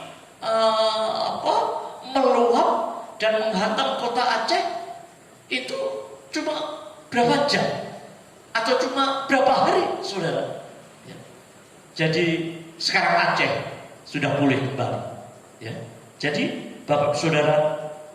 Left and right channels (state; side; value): identical; both; correlation 1.00